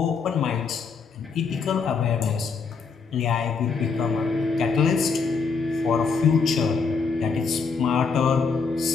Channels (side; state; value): right; quieter; 5.1 dB